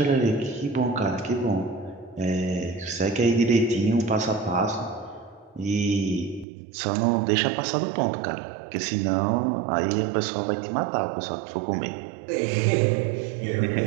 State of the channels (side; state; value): left; drops out; at 6.5 s